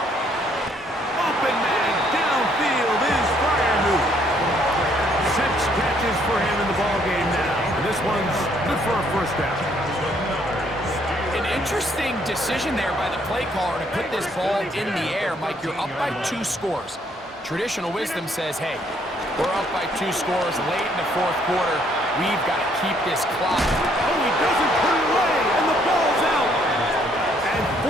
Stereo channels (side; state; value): both; normal; correlation 0.67